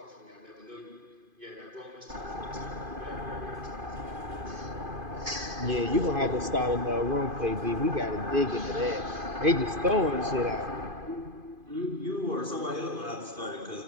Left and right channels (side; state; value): left; late; 2.5 ms